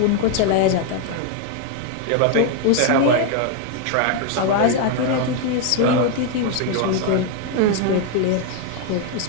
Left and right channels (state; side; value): different; both; correlation 0.01